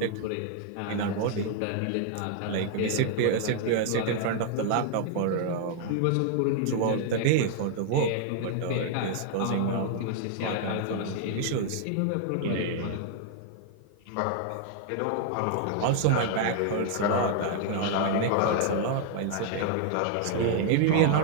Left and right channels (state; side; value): different; both; correlation 0.00